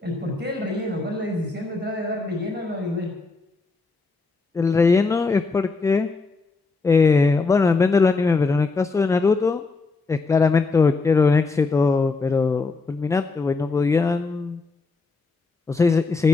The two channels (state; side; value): quieter; right; 4.0 dB